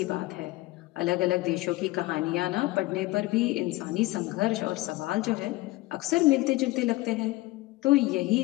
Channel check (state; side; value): quieter; right; 19.5 dB